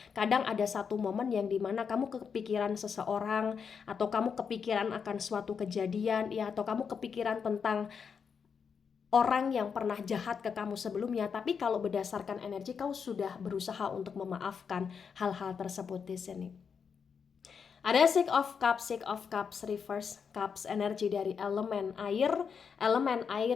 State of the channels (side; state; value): right; quieter; 6.4 dB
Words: Kadang ada satu momen yang dimana kamu kepikiran seseorang, atau kamu kepikiran akan suatu kejadian ya, atau kamu kepikiran tentang orang yang pernah jahat ke kamu sebelumnya, tapi kalau berdasarkan energi kau sudah berusaha untuk memaafkan hal-hal tersebut di sini. Ada Six of Cups reverse, Cups energi dari elemen air